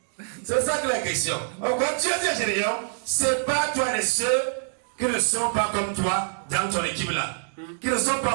C'est ça que la question. Quand Dieu dit à Gédéon, c'est pas toi de ceux qui ne sont pas comme toi dans ton équipe là. Qui ne sont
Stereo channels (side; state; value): left; silent; digital silence